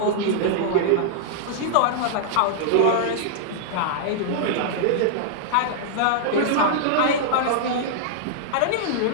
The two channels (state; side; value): different; both; correlation -0.01